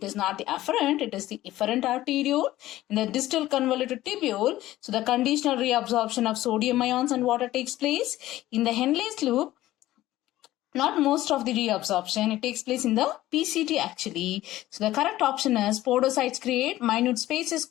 is not the afferent, it is the efferent arteriole in the distal convoluted tubule. So the conditional reabsorption of sodium ions and water takes place. In the Henle's loop, not most of the reabsorption, it takes place in the PCT actually. So the correct option is podocytes create minute spaces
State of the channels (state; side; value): quieter; right; 15.4 dB